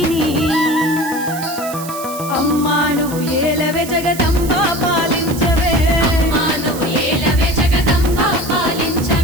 అమ్మా నువ్వు ఏలవే జగదంబా పాలించవే అమ్మా నువ్వు ఏలవే జగదంబా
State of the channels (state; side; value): noise; right; hiss, 12 dB below the sound